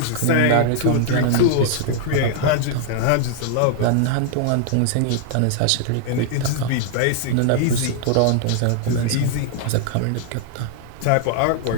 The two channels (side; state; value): both; different; correlation 0.00